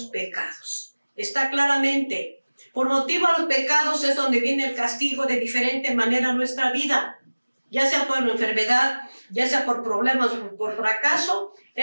pecados. Está claramente, por motivo a los pecados es donde viene el castigo de diferente manera en nuestra vida, ya sea por una enfermedad, ya sea por problemas, por fracaso,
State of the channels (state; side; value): inverted; both; correlation -1.00